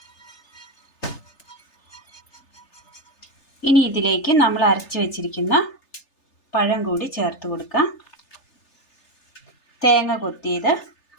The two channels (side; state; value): right; late; 3.3 ms